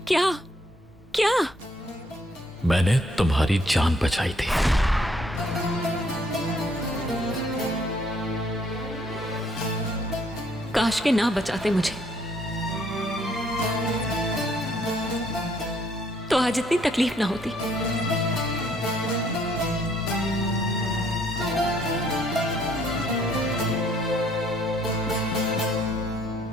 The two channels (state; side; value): normal; both; correlation 0.66